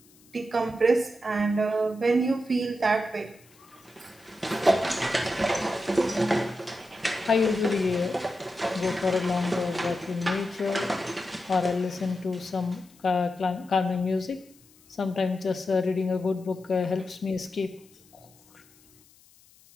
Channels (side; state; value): left; noise; hiss, 28 dB below the sound